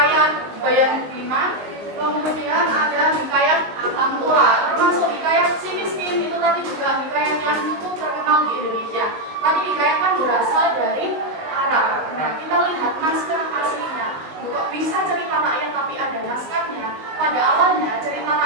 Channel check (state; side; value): late; left; 19 ms